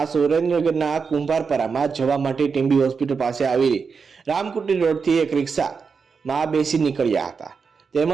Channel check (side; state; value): left; quieter; 5.5 dB